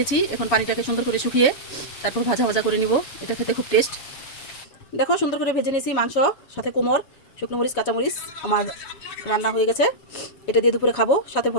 এখন পানিটাকে সুন্দর করে শুকিয়ে তারপর ভাজা ভাজা করে নিব। এটা খেতে খুব টেস্ট। দেখো, সুন্দর করে ভেজে নিয়েছি মাংস, সাথে কোমর, শুকনো মরিচ, কাঁচামরিচ। আমার রান্না হয়ে গেছে, এটা দিয়ে দুপুরে খাবো, সাথে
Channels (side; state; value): right; late; 7.1 ms